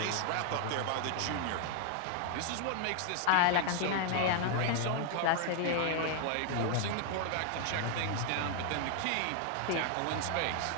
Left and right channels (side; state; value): both; different; correlation 0.00